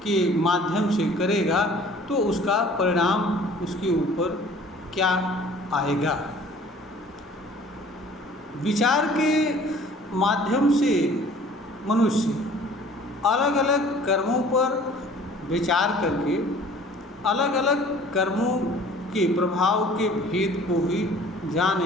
के माध्यम से करेगा तो उसका परिणाम उसके ऊपर क्या आएगा। विचार के माध्यम से मनुष्य अलग अलग कर्मों पर विचार करके अलग अलग कर्मों के प्रभाव के भेद को भी जान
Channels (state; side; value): normal; both; correlation 0.51